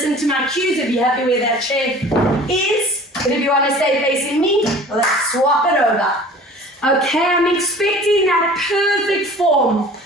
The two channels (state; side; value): normal; both; correlation 0.45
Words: to my cues, if you're happy where that chair is. But if you want to stay facing me, let's swap it over. Okay, I'm expecting that perfect form.